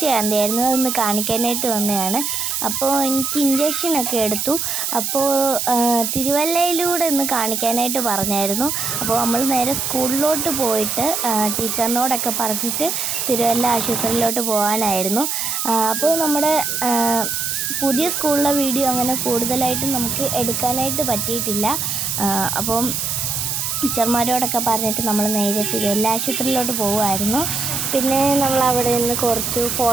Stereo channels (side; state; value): right; noise; hiss, 1 dB below the sound